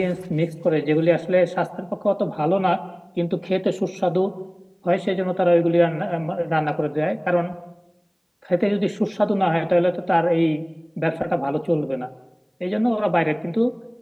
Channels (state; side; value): identical; both; correlation 1.00